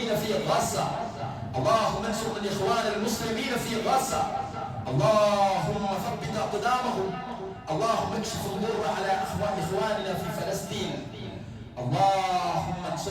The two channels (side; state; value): both; identical; correlation 1.00